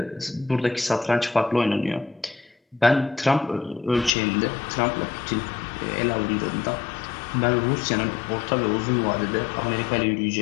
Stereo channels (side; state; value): right; drops out; at 4.1 s